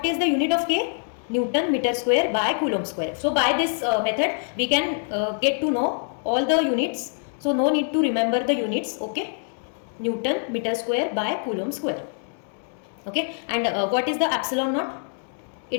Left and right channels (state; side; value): silent; right; digital silence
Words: is the unit of K? Newton meter square by Coulomb square. So by this method we can get to know all the units. So no need to remember the units. Okay, Newton meter square by Coulomb square. Okay, and what is the epsilon naught?